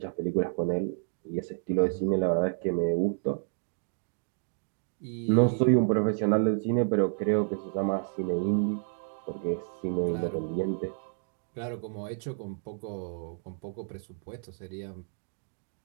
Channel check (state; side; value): silent; left; digital silence